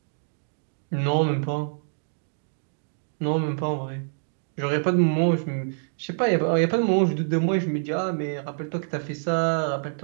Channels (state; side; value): silent; left; digital silence